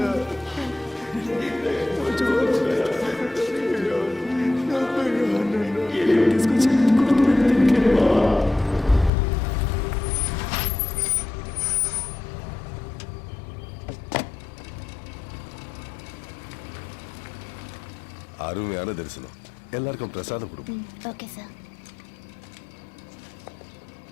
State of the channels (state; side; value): drops out; right; at 9.1 s